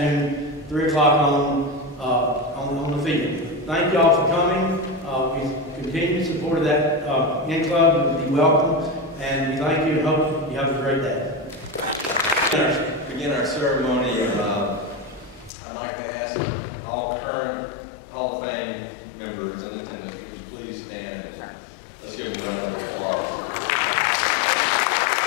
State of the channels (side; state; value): right; drops out; at 15.5 s